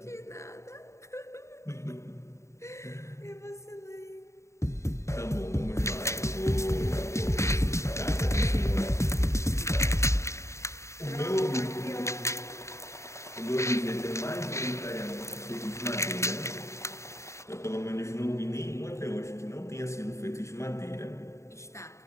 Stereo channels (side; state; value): right; late; 0.14 ms